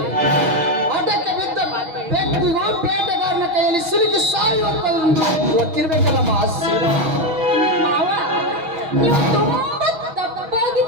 ಅದಕ್ಕೆ ಬಿದ್ದ ಬೆಕ್ಕಿಗೂ ಬೇಟೆಗಾರನ ಕೈಯಲ್ಲಿ ಸಿಲುಕಿ ಸಾಯುವಂತ ಗೊತ್ತಿರ್ಬೇಕಲ್ಲಮ್ಮ ಶೀಲಾ. ಮಾವ, ನೀವು ತುಂಬಾ ತಪ್ಪಾಗಿ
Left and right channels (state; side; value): late; left; 6.3 ms